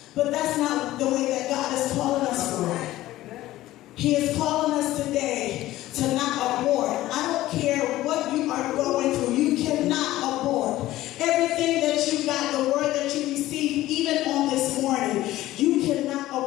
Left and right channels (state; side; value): quieter; right; 15.8 dB